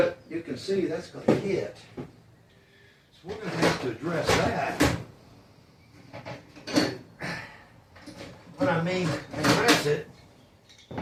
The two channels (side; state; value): both; identical; correlation 1.00